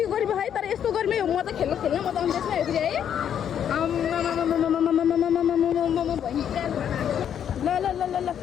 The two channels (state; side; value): quieter; right; 9.1 dB